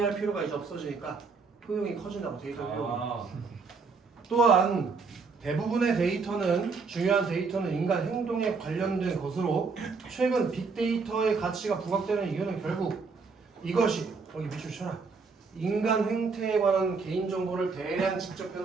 필요가 이제 없어지니까 효용이 커진다고 데이터 효용 또한 대부분의 데이터는 중요한 데이터는 인간 행동에 관련된 것으로 최근 빅데이터의 가치가 부각되는 이유는 결국 이것이 여기 밑줄 쳐라 인간 행태에 관한 개인정보를 대량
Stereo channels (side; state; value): left; quieter; 4.7 dB